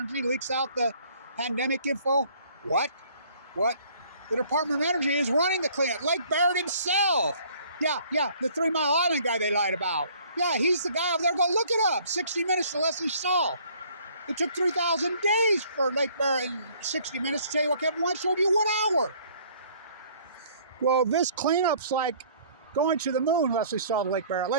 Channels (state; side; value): inverted; both; correlation -0.57